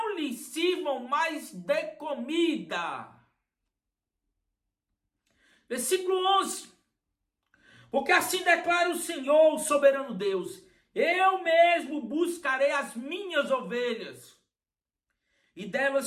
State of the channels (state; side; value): identical; both; correlation 1.00